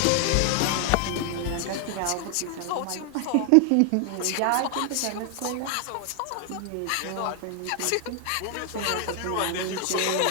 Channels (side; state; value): both; different; correlation 0.00